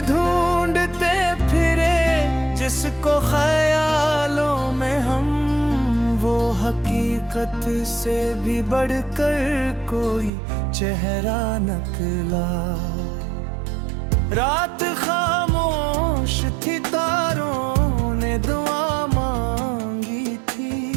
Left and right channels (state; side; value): drops out; left; at 10.3 s